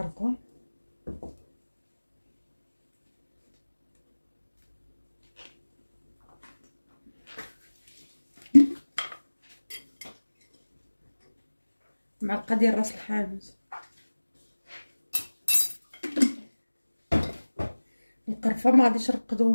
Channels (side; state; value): both; inverted; correlation -1.00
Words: معلقة ديال راس الحانوت. القرفة ما غاديش